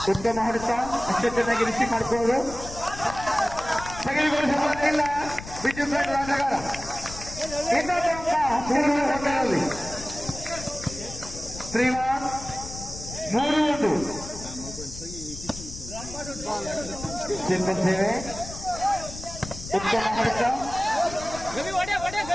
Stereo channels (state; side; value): noise; left; rumble, 12 dB below the sound